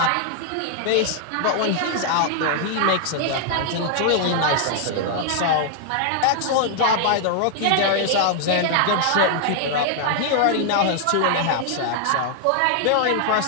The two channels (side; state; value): both; different; correlation 0.00